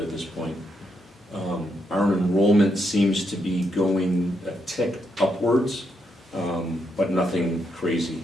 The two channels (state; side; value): normal; both; correlation 0.79